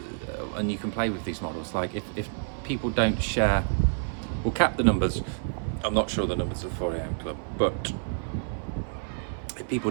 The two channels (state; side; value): silent; left; 57 dB below the other